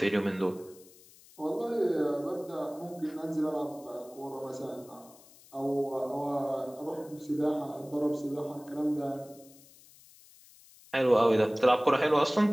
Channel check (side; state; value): left; noise; hiss, 24 dB below the sound